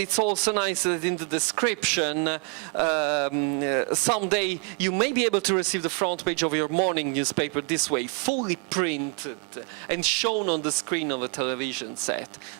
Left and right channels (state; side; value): quieter; left; 34.9 dB